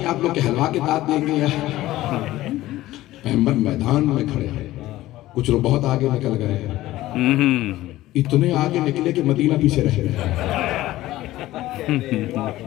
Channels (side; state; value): right; quieter; 16.1 dB